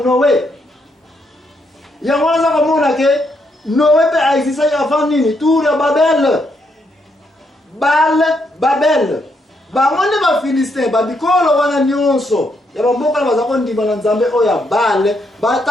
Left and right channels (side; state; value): both; normal; correlation 0.77